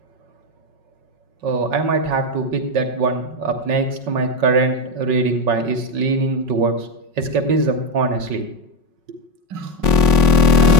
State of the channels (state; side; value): late; left; 5.4 ms